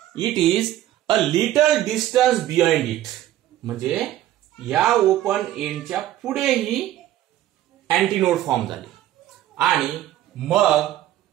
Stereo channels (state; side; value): quieter; left; 13.4 dB